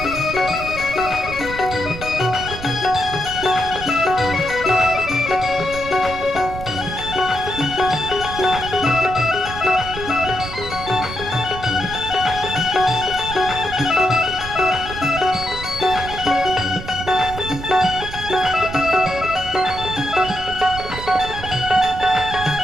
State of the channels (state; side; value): noise; right; rumble, 11 dB below the sound